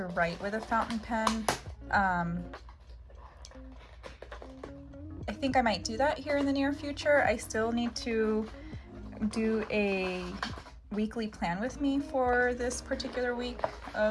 write with a fountain pen. I think I might do that here in the near future. I still need to do a weekly plan with me for this particular week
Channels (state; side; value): identical; both; correlation 1.00